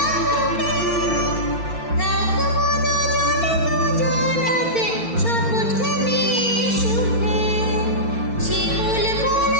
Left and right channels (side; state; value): right; late; 4.4 ms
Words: থাকবো দুজনে দুজনাতে শপথ নিয়ে সুখে। শিমুল